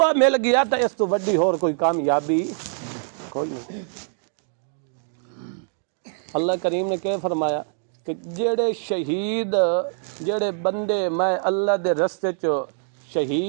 مل گیا تو اس تو بڑی اور کوئی کامیابی کوئی نہیں۔ اللہ کریم نے کیا فرمایا کہ جڑے شہید، جڑے بندے میں اللہ دے رستے چ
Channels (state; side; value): silent; left; digital silence